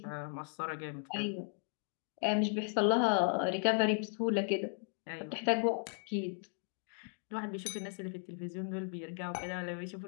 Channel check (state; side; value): silent; right; 54 dB below the other